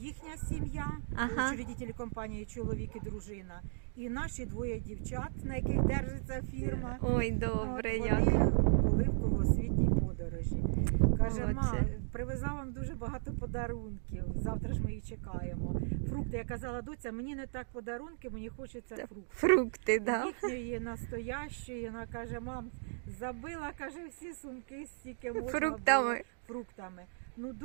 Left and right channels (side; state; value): left; silent; digital silence